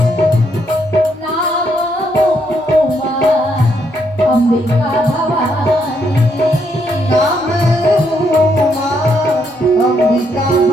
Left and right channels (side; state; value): both; normal; correlation 0.75